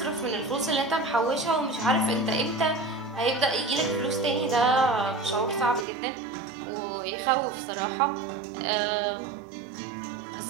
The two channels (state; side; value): drops out; left; at 5.9 s